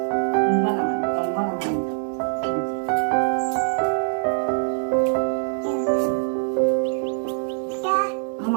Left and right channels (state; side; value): silent; left; digital silence